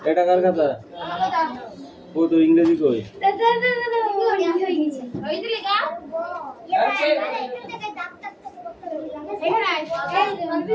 এটা কার কথা ও তো ইংরেজি কই ওই দিলে গা এখানে আয়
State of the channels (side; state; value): both; identical; correlation 1.00